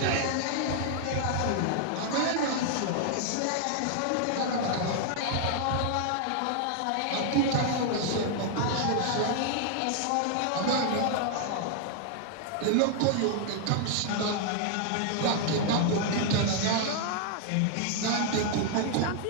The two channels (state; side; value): different; both; correlation 0.00